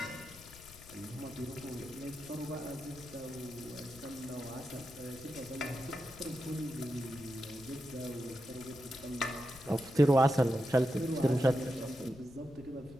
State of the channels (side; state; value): left; noise; rumble, 19 dB below the sound